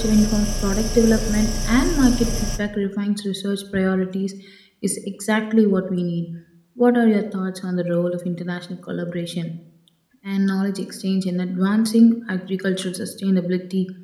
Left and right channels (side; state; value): both; identical; correlation 1.00